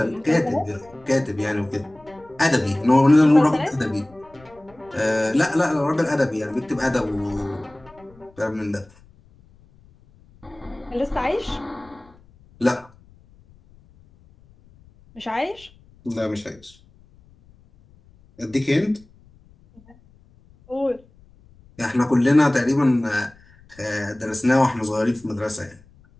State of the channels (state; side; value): noise; left; rumble, 28 dB below the sound